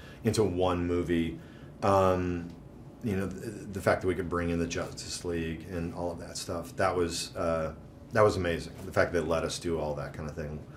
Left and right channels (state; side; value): identical; both; correlation 1.00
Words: into one movie, the fact that we could bring in the Justice League and all of that stuff, that was amazing. The fact that they let us do all that kind of thing.